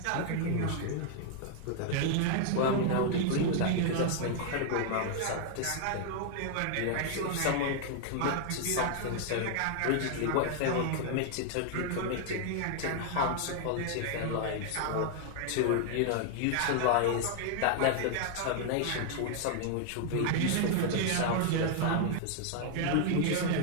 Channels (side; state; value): both; different; correlation 0.00